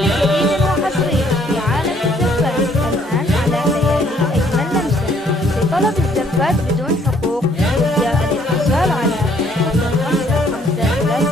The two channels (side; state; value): both; normal; correlation 0.65